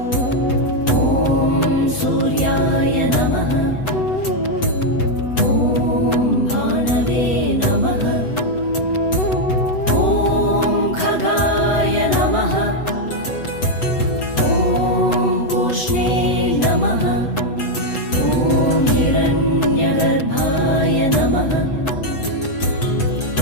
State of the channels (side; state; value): right; late; 8.0 ms